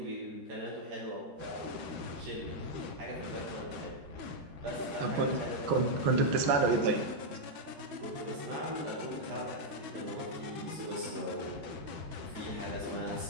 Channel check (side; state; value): left; late; 13 ms